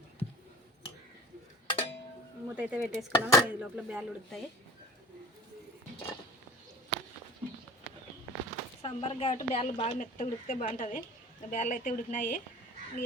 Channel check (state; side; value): normal; both; correlation 0.41